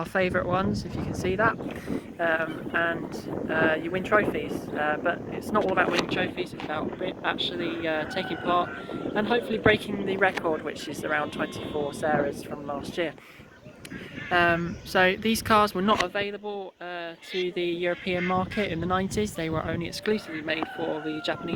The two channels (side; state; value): both; identical; correlation 1.00